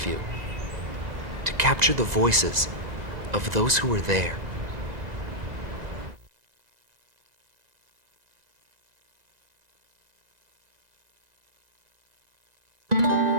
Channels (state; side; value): late; left; 1.9 ms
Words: to capture the voices of those who were there.